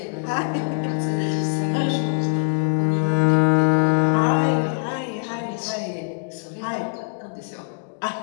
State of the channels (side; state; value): right; silent; digital silence